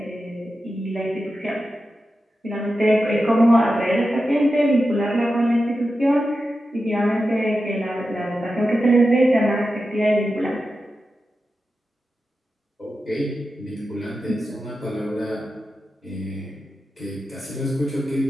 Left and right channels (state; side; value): normal; both; correlation 0.91